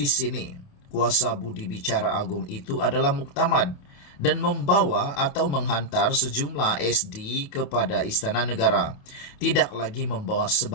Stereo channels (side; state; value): right; late; 28 ms